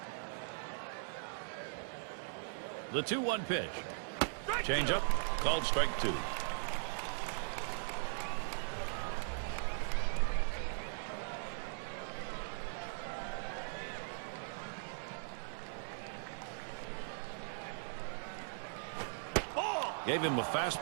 The 2-1 pitch. Change up. Called strike 2. Gave him a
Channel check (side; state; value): left; silent; 51 dB below the other